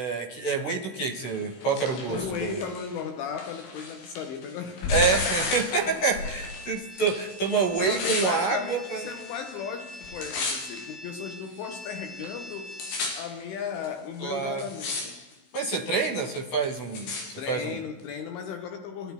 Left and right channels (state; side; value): late; right; 16 ms